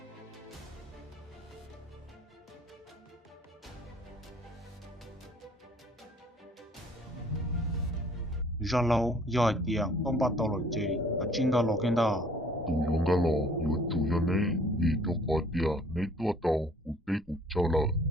Ra lâu, giỏi tiền, con bắt tàu lội chế, và chính đó lọ kênh đó. Tu yong ga lo, yu chu ya ne, yi to ka dia, ne tu tao, u te u cha la,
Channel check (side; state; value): both; normal; correlation 0.57